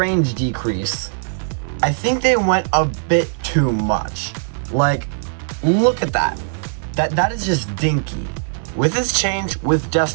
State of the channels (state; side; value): silent; left; digital silence